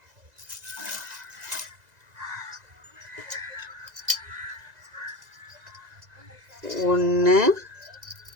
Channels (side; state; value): left; late; 2.0 ms